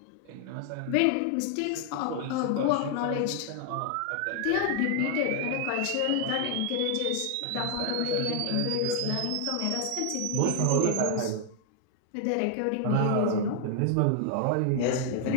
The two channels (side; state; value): both; different; correlation 0.00